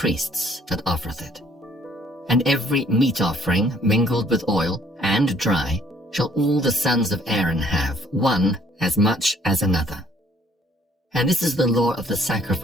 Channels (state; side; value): normal; both; correlation 0.61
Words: that offereth it. And every meat offering mingled with oil and dry shall all the sons of Aaron have, one as much as another. And this is the law of the